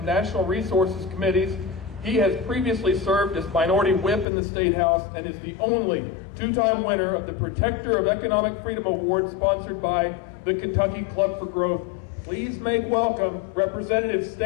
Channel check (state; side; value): drops out; right; at 4.2 s